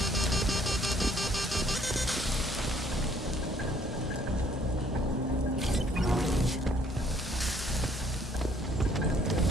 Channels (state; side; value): normal; both; correlation 0.62